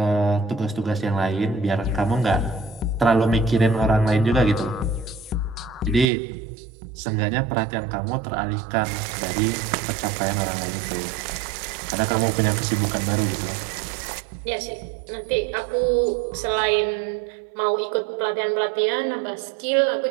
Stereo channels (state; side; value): drops out; left; at 6.1 s